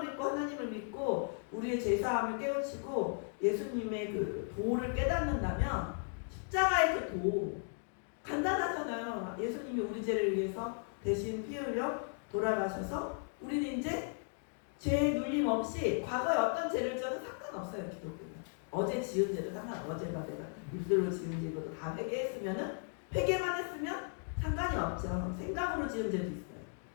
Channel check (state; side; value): silent; right; 54 dB below the other